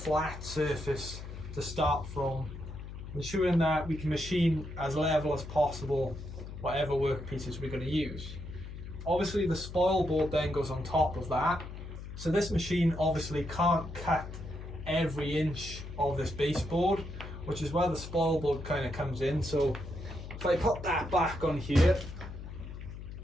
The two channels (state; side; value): noise; left; hum, 10 dB below the sound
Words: surface to start from, ensuring that we can machine as level as possible whatever workpieces we're going to use. Obviously the spoilboard then goes on top of that. So this machine obviously can't cut every inch of this baseboard, which is where the spoilboard kind of comes in. So if I put that back on here,